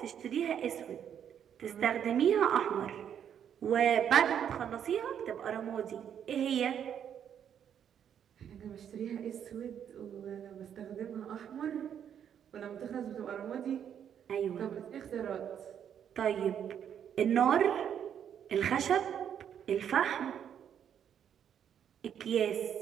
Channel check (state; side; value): quieter; left; 8.9 dB